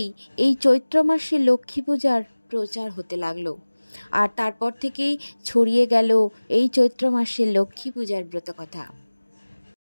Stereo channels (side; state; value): both; inverted; correlation -1.00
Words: এই চৈত্র মাসে লক্ষ্মী পূজার প্রচার হতে লাগলো। আর তারপর থেকেই ছড়িয়ে গেল এই চৈত্র মাসে লক্ষ্মী পূজার ব্রতকথা।